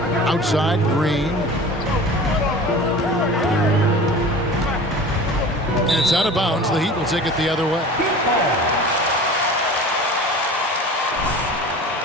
Outside, Green. And it's out of bounds. The Heat will take it the other way.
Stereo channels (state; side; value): normal; both; correlation 0.38